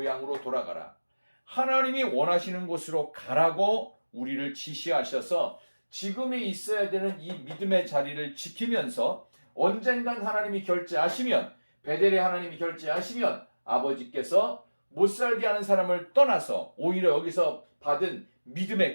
돌아가라, 하나님이 원하시는 곳으로 가라고 우리를 지시하셔서 지금에 있어야 되는 이 믿음의 자리를 지키면서 언젠간 하나님이 결제하시면, 베델의 하나님이 결제하시면 아버지께서 못 살게 하는 사람을 떠나서 오히려 여기서 받은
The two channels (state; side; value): inverted; both; correlation -1.00